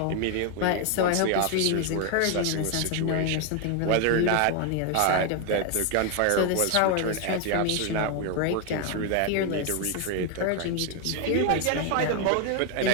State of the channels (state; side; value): different; both; correlation 0.01